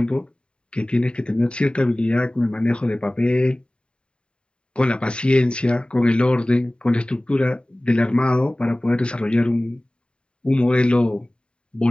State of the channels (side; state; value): right; late; 0.052 ms